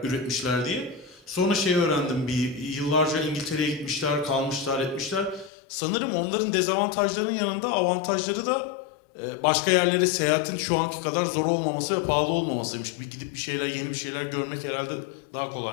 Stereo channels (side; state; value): right; drops out; at 5.5 s